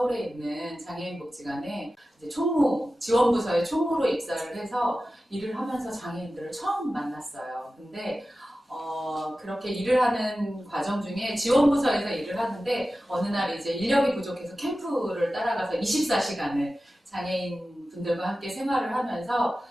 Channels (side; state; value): both; normal; correlation 0.94